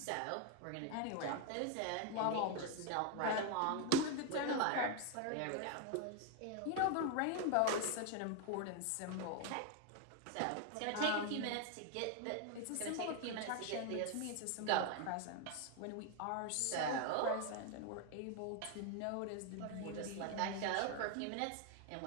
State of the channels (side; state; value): both; different; correlation 0.01